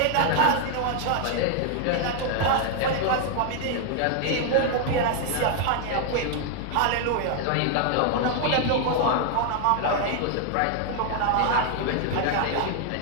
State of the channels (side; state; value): both; different; correlation 0.00